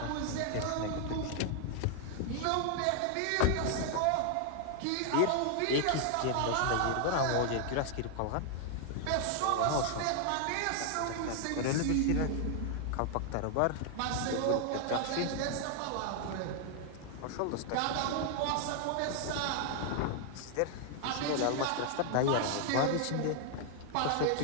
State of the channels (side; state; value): both; different; correlation 0.00